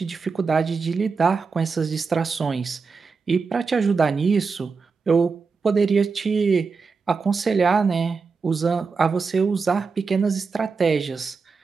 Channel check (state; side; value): quieter; left; 4.9 dB